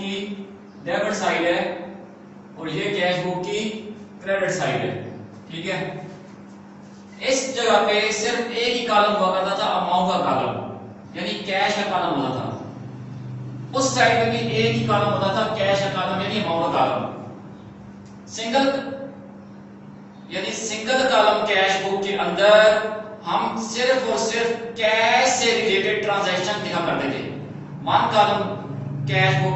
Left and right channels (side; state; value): both; identical; correlation 1.00